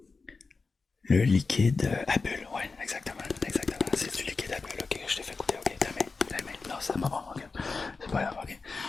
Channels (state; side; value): quieter; right; 4.3 dB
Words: Le liquide à bulles, ouais, exactement, exactement. C'est du liquide à bulles, ok, je t'ai fait goûter, ok, ta main. Non, c'est pas bon, ok. C'est pas grave, ok.